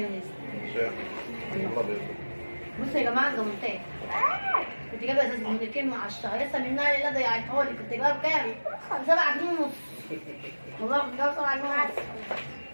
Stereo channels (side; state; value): both; inverted; correlation -1.00